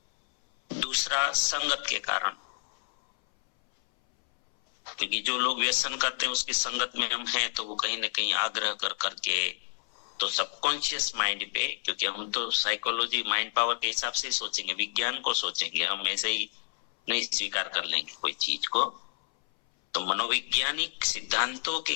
दूसरा, संगत के कारण, क्योंकि जो लोग व्यसन करते हैं उसकी संगत में हम हैं, तो वो कहीं ना कहीं आग्रह कर करके, तो सबकॉन्शियस माइंड पे, क्योंकि हम तो साइकोलॉजी माइंड पावर के हिसाब से ही सोचेंगे, विज्ञान को सोचेंगे, हम ऐसे ही नहीं स्वीकार कर लेंगे कोई चीज को। तो मनोवैज्ञानिक सिद्धांतों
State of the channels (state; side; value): silent; right; 58 dB below the other